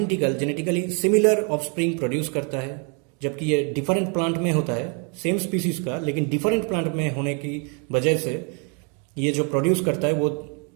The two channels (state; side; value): quieter; left; 36.7 dB